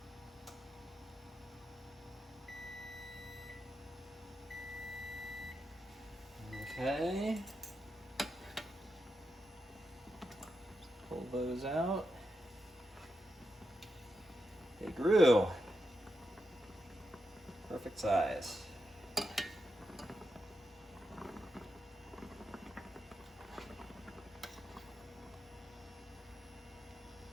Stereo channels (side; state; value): both; normal; correlation 0.87